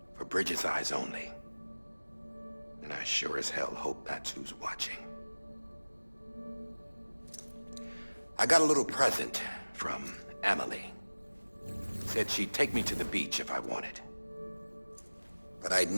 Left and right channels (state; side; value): inverted; both; correlation -1.00